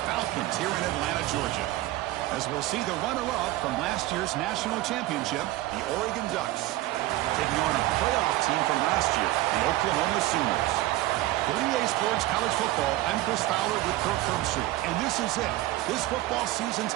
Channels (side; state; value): left; quieter; 16.9 dB